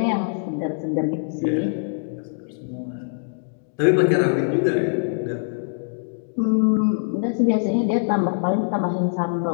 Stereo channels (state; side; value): silent; right; digital silence